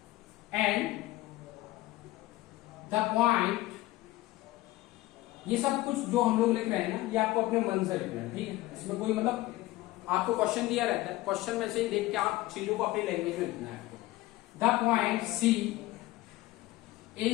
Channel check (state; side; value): quieter; right; 17.8 dB